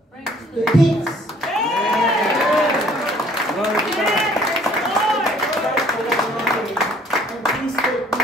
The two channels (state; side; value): normal; both; correlation 0.58